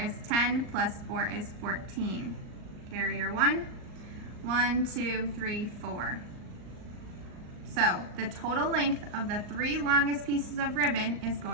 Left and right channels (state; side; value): late; left; 38 ms